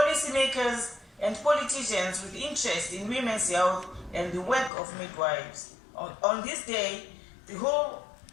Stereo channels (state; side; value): drops out; right; at 4.7 s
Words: and politicians with interest in women's health and the work of midwives. On this day, the whole